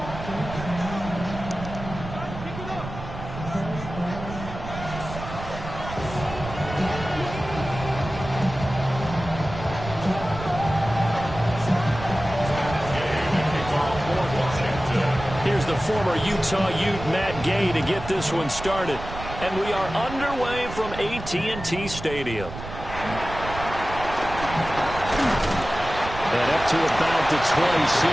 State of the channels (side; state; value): right; noise; rumble, 10 dB below the sound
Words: Former Utah Ute Matt Gay to get this one started. And we are underway from AT&T Stadium. And up to about the